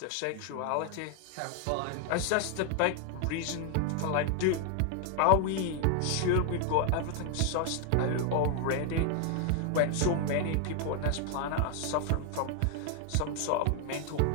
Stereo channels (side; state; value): both; different; correlation 0.00